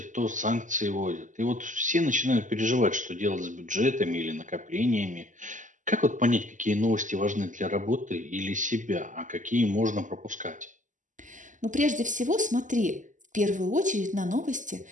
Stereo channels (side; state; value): left; late; 0.37 ms